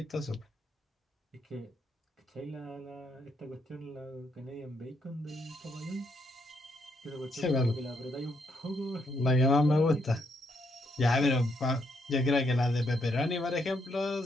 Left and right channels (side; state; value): both; normal; correlation 0.76